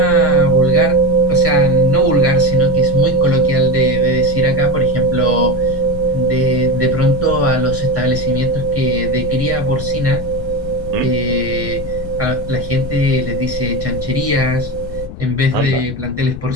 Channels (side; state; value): left; noise; rumble, 12 dB below the sound